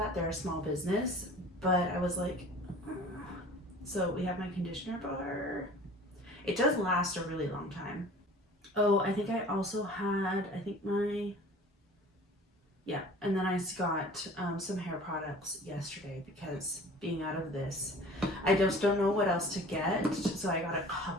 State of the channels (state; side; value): normal; both; correlation 0.45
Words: They're a small business, but I was like, so we have my conditioner bar. It does last a really long time. Oh, I think I also had, and then I got some hair products yesterday because being out of this, I just don't know what else to get. So I got a